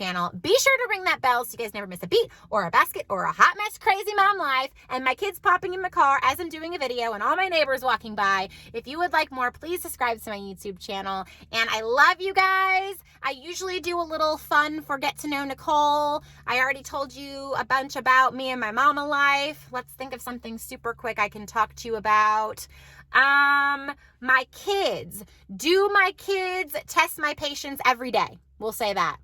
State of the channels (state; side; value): identical; both; correlation 1.00